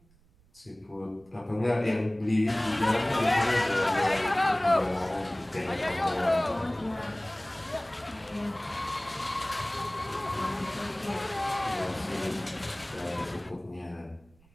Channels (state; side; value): noise; right; rumble, 30 dB below the sound